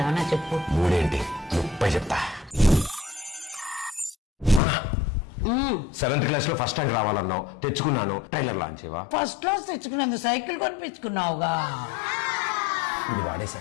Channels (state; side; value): drops out; right; at 4.6 s